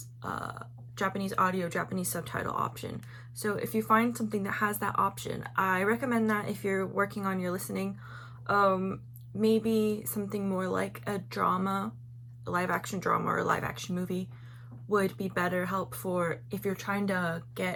Japanese audio, Japanese subtitle option. So if you find something that has that option, I recommend that if you're working on your listening. Maybe something more like a drama, a live action drama or a live action movie would be better help for if you're trying to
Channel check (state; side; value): identical; both; correlation 1.00